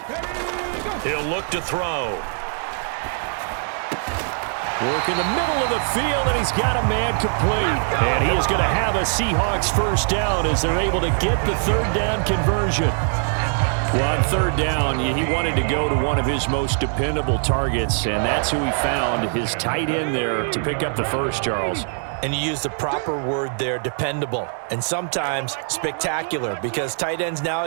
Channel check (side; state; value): left; silent; 64 dB below the other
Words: He'll look to throw. Work in the middle of the field, and he's got a man complete. And he is going to have a Seahawks 1st down as they're able to get the 3rd down conversion. Well, on 3rd down, he wanted to go to one of his most dependable targets, and that's who he found, his tight end there, to pick up the first, Charles. And you use the proper word there, dependable, and sometimes spectacular, because tight ends